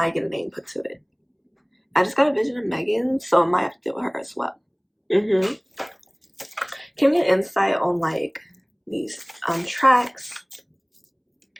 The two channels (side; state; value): both; identical; correlation 1.00